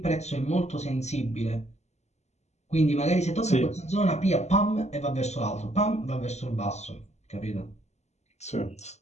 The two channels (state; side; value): late; right; 0.32 ms